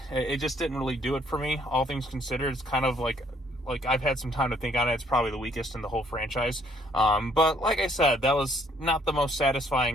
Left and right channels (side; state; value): both; normal; correlation 0.65